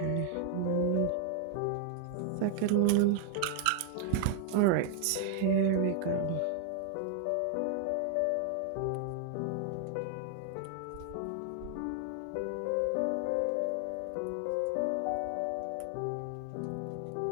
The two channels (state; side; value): different; both; correlation 0.00